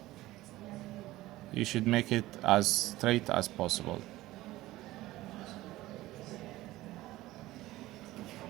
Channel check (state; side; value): quieter; left; 17.0 dB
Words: You should make it as straight as possible.